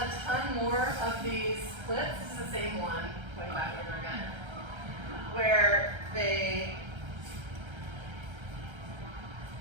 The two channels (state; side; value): late; left; 1.3 ms